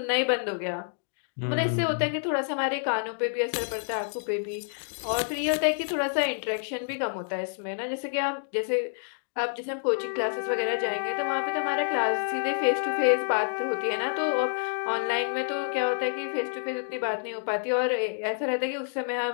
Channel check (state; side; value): silent; right; digital silence